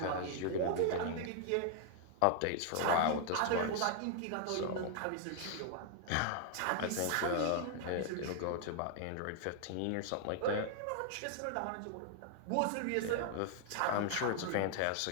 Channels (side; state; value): both; different; correlation 0.00